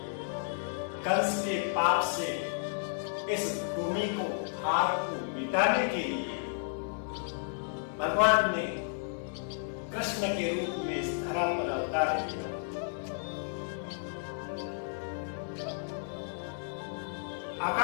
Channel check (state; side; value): silent; right; digital silence